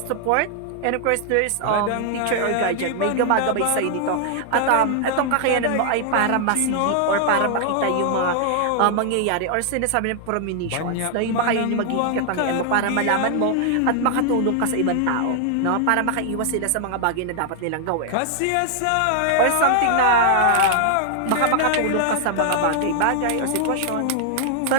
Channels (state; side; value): different; both; correlation 0.00